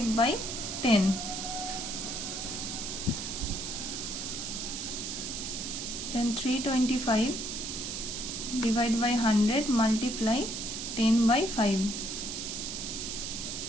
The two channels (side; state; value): right; noise; hiss, 5 dB below the sound